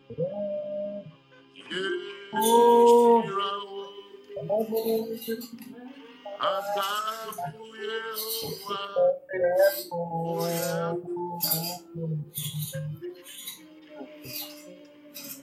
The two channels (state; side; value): identical; both; correlation 1.00